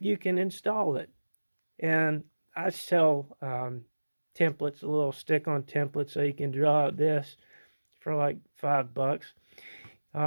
can install it. And I sell templates, a little stick-on template, so you can draw out this for like $5.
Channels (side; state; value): both; inverted; correlation -1.00